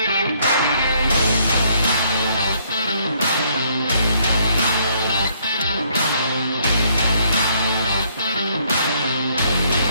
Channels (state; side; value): inverted; both; correlation -0.67